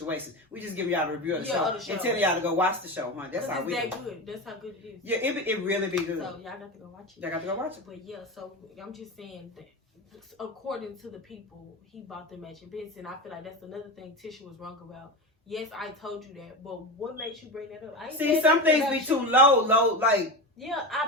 We just give y'all a review of the show and tell y'all to go watch the show, huh? That's how we do. Good. That's how good it is. Yeah, it really be good. So y'all got to go watch it. Y'all got to go watch it. But yeah, so I'm just saying that according to the people, he bought the matching bits, and I feel like that's another thing Tisha was wrong about. Yes, I told you that, but what makes you bring that up? See, some things be too low, like. Yeah,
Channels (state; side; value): normal; both; correlation 0.22